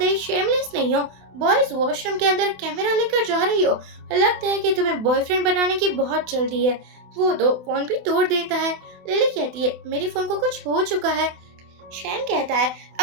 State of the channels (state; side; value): late; left; 28 ms